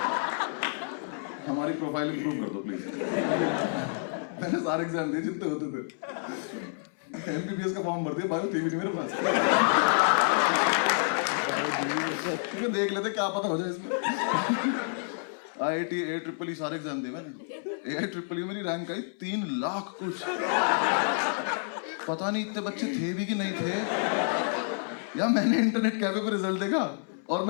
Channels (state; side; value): silent; right; 59 dB below the other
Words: हमारी प्रोफाइल इंप्रूव कर दो प्लीज। मैंने सारे एग्जाम दिए जितने होते थे, एमबीबीएस का फॉर्म भर दिया, बायो थी भी नहीं मेरे पास। क्योंकि देख लेते क्या पता हो जाए इसमें। IIT AIEEE सारे एग्जाम दिए मैंने। AIEEE मेरी रैंक आई 3 लाख कुछ। पता नहीं इतने बच्चे थे भी कि नहीं थे, या मैंने इंटरनेट कैफे पे रिजल्ट देखा और